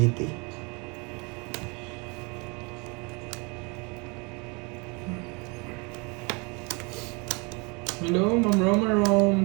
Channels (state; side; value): quieter; left; 29.9 dB